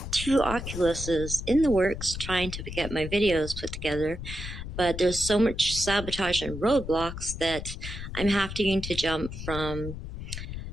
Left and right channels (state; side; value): noise; left; rumble, 8 dB below the sound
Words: 2 Oculuses in the works trying to get my videos put together, but there's so much sabotage and roadblocks that I'm having to jump from